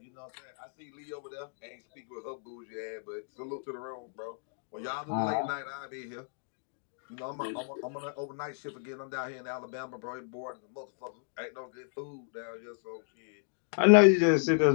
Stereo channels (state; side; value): silent; right; digital silence